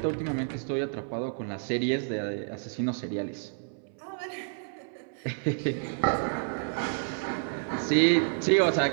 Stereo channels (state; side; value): silent; left; 58 dB below the other